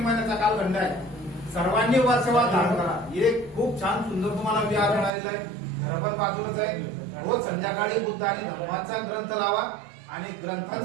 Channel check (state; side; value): drops out; left; at 5.1 s